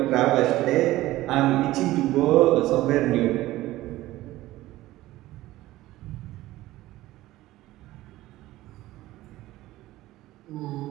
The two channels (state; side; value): quieter; left; 16.6 dB